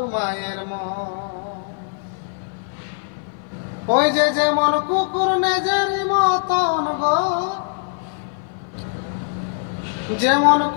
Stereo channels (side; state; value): right; silent; 56 dB below the other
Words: মায়ের মন। ওই যে যেমন কুকুর নেজেরই মতন গো, যেমন